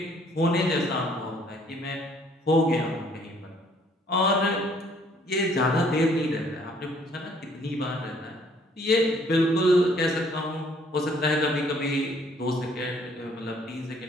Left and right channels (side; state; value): both; normal; correlation 0.62